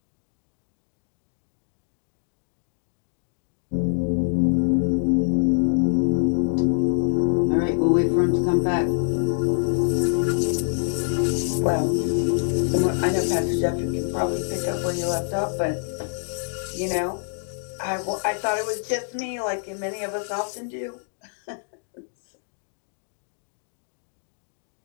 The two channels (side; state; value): right; silent; digital silence